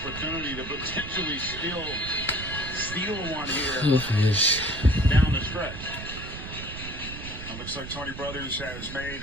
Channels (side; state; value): right; noise; rumble, 10 dB below the sound